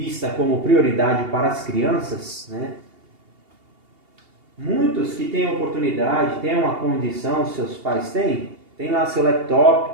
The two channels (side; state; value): left; late; 2.8 ms